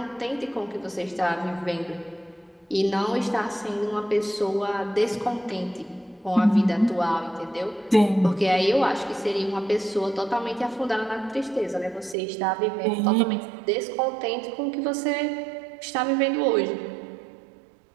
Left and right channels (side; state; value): left; drops out; at 12.2 s